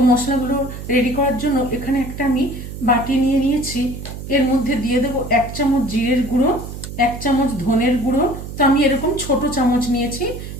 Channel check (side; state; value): right; noise; hum, 10 dB below the sound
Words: মশলাগুলো রেডি করার জন্য এখানে একটা আমি বাটি নিয়ে নিয়েছি। এর মধ্যে দিয়ে দেবো 1 চামচ জিরের গুঁড়ো, 1 চামচ ধনের গুঁড়ো। তো আমি এরকম ছোট চামচ নিয়েছি,